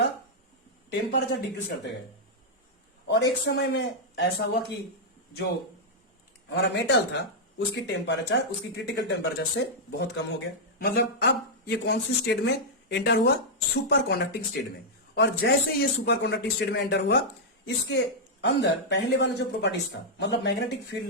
टेम्परेचर डिक्रीज करते गए, और एक समय में ऐसा हुआ कि जो हमारा मेटल था उसकी टेम्परेचर, उसकी क्रिटिकल टेम्परेचर से बहुत कम हो गया। मतलब अब ये कौन सी स्टेट में एंटर हुआ, सुपर कंडक्टिंग स्टेट में। और जैसे ये सुपर कंडक्टिंग स्टेट में एंटर हुआ, इसके अंदर पहले वाला जो प्रॉपर्टीज था, मतलब मैग्नेटिक फील्ड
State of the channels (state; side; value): normal; both; correlation -0.06